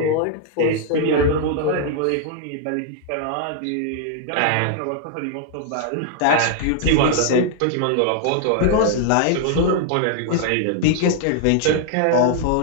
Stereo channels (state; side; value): different; both; correlation 0.00